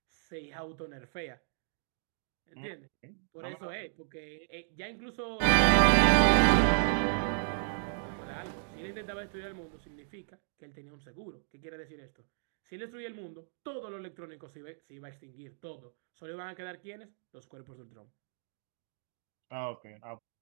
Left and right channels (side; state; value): left; silent; digital silence